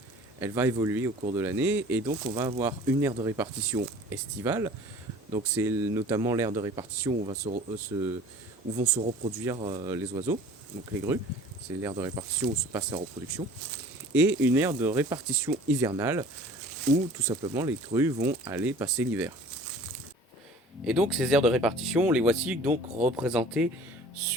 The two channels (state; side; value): normal; both; correlation 0.47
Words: elle va évoluer au cours de l'année, et donc on va avoir une aire de répartition estivale. Donc, c'est notamment l'aire de répartition où vont se reproduire les oiseaux, donc les grues. C'est l'aire de répartition où se passe la reproduction. Et une aire de répartition hivernale, où tout simplement les grues vont aller passer l'hiver. Et donc ces aires de répartition, les voici donc représentées